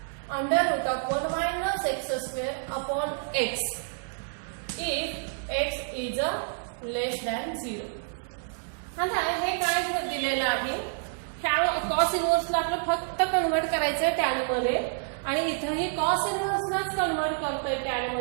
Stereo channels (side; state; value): left; silent; digital silence